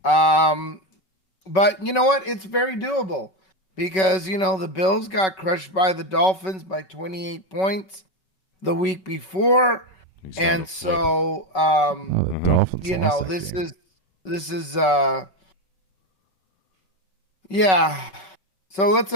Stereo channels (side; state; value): right; late; 5.3 ms